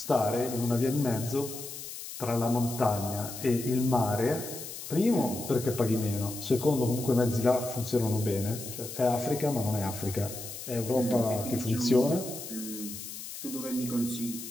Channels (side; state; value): left; noise; hiss, 10 dB below the sound